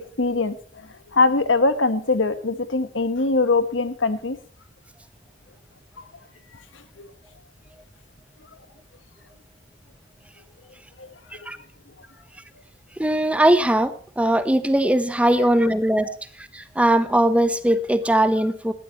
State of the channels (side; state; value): both; normal; correlation 0.50